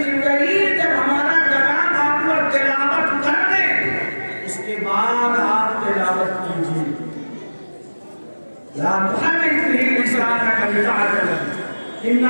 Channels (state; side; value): inverted; both; correlation -1.00